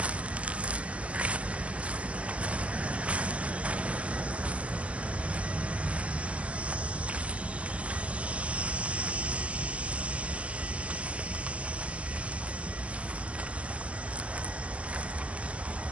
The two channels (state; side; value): late; left; 0.063 ms